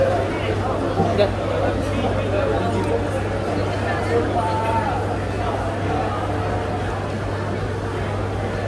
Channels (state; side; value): identical; both; correlation 1.00